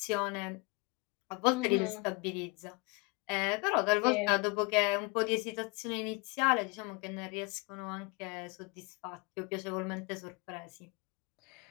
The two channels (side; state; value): right; quieter; 28.1 dB